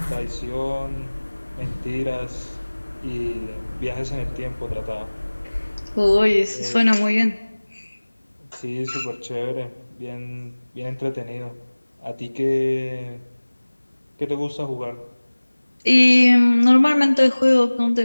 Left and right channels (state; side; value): inverted; both; correlation -1.00